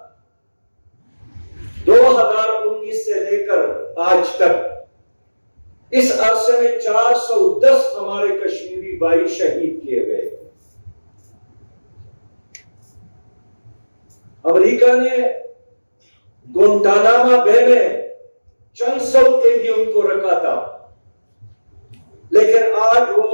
2019 سے لے کر آج تک اس عرصے میں 410 ہمارے کشمیری بھائی شہید کیے گئے۔ امریکہ نے گوانتانامو بے میں چند سو قیدیوں کو رکھا تھا، لیکن آج وہ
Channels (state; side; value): inverted; both; correlation -1.00